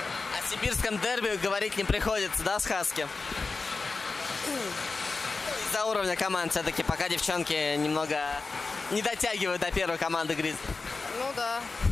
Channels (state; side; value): quieter; right; 4.0 dB